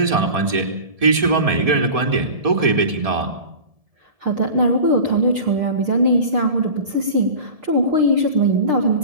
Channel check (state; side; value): late; left; 1.7 ms